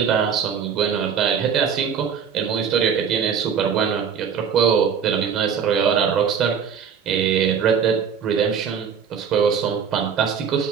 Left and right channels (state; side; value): quieter; left; 7.1 dB